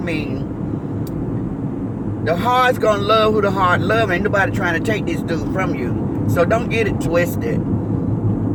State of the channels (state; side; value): identical; both; correlation 1.00